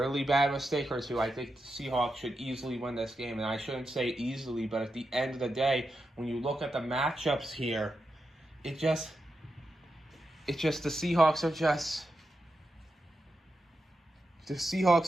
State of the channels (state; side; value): normal; both; correlation 0.88